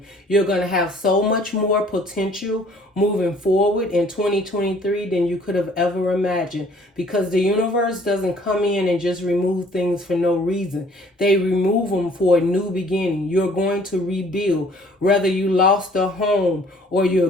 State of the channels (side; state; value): both; normal; correlation 0.57